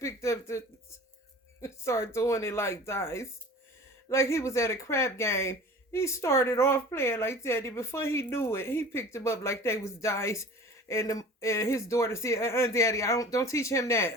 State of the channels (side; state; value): both; normal; correlation 0.42